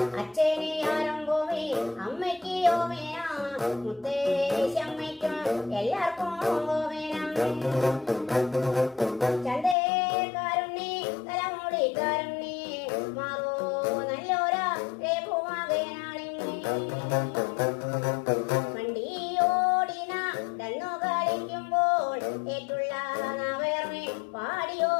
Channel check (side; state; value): right; drops out; at 9.8 s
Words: അച്ഛനെ ആരംഭോമേ അമ്മയ്ക്ക് ഓമേന മുത്തേശമ്മയ്ക്കും എല്ലാവർക്കും ഓമേന ചന്തേക്കാരുണ്ണി തലമുടിക്കാരുണ്ണി മാറോ നല്ലോരാ രേഖുമാകേനാളിങ്ങി വണ്ടിയോടിന തന്നു കളിക്കുമ്പോൾ ഏറ്റുള്ള നവേർമേ